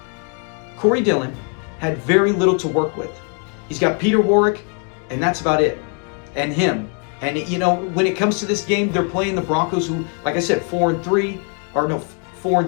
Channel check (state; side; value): quieter; right; 39.0 dB